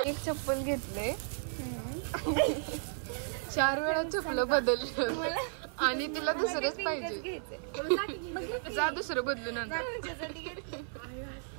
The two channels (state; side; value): silent; left; 55 dB below the other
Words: एक चप्पल घेतले, 4 वेळा चप्पल बदललं आणि तिला दुसरंच पाहिजे. जा दुसरं बदलून आणा.